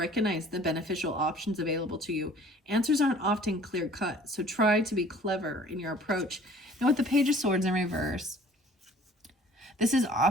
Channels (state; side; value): normal; both; correlation 0.51